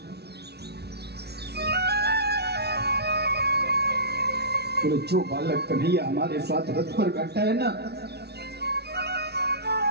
बोले जो बालक कन्हैया हमारे साथ रथ पर बैठा है ना,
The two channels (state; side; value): late; left; 0.48 ms